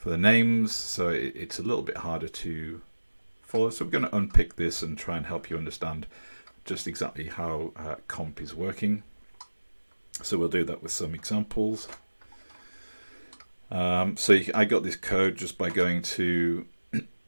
names, so it's a little bit harder to follow. So we're going to unpick this and try and help you understand just exactly how comp is working. So we'll do that with some examples. So I got this code just by going to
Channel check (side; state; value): both; inverted; correlation -1.00